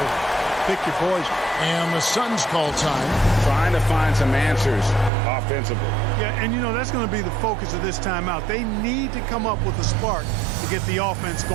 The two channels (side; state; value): left; drops out; at 5.1 s